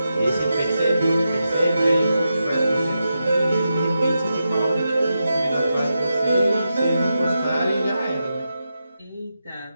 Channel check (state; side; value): inverted; both; correlation -0.88